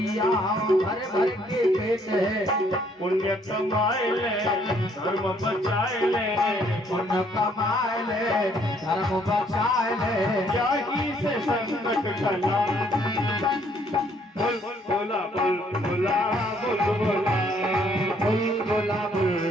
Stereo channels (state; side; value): normal; both; correlation 0.65